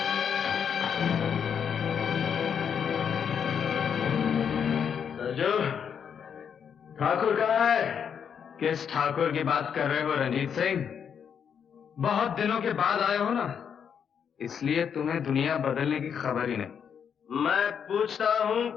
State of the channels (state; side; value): quieter; right; 7.6 dB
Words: सरजू, ठाकुर कहाँ है? किस ठाकुर की बात कर रहे हो रंजीत सिंह? बहुत दिनों के बाद आए हो ना, इसलिए तुम्हें दुनिया बदलने की खबर ही नहीं। मैं पूछता हूँ